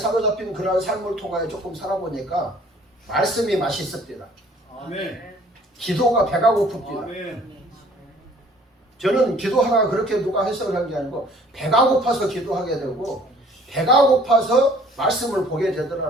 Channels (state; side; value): normal; both; correlation 0.55